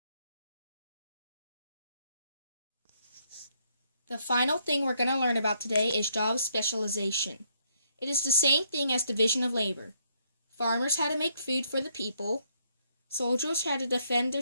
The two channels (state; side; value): inverted; both; correlation -0.72